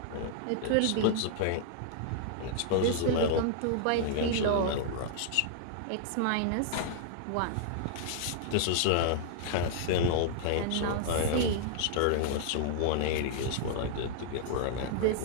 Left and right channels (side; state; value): both; different; correlation -0.01